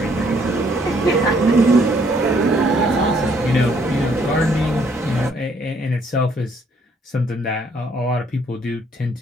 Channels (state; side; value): normal; both; correlation 0.66